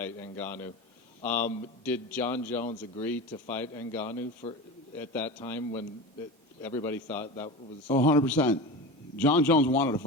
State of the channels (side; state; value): both; normal; correlation 0.27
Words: Ngannou. Did John Jones agree to fight Ngannou at that time when everybody thought that was? Oh, 100%. John Jones wanted to